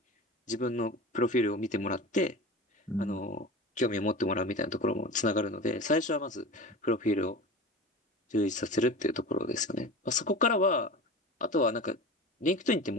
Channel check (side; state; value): both; normal; correlation 0.32